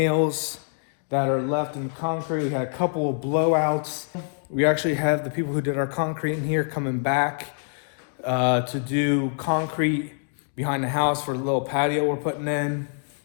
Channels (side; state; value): right; silent; 62 dB below the other